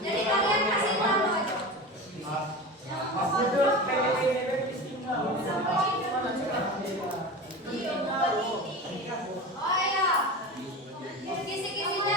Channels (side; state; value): both; normal; correlation 0.29